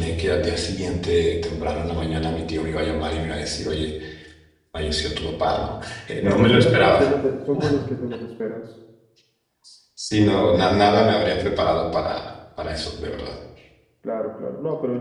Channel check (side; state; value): both; identical; correlation 1.00